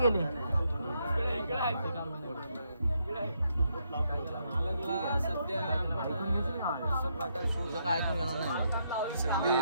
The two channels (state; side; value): inverted; both; correlation -0.77